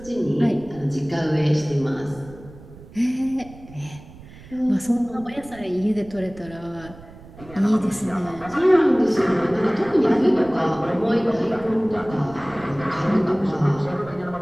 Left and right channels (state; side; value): noise; right; rumble, 19 dB below the sound